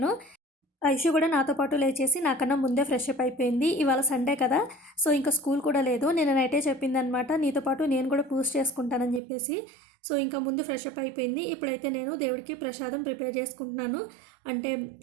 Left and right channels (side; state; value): left; drops out; at 9.2 s